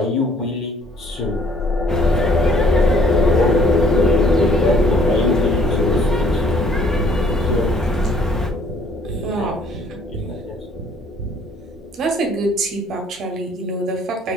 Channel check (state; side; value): normal; both; correlation 0.61